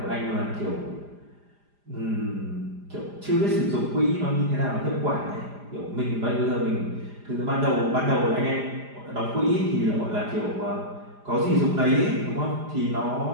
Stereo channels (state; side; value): late; left; 4.9 ms